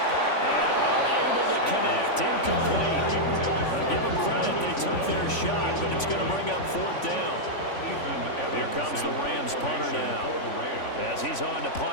And unable to connect. Incomplete. Give them credit. They took their shot, but it's going to bring up 4th down. Here comes the Rams punter now, as he's on to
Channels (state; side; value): late; right; 3.5 ms